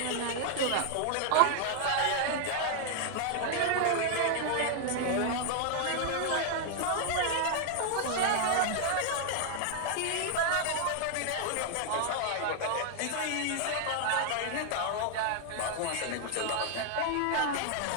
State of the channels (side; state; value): both; different; correlation 0.00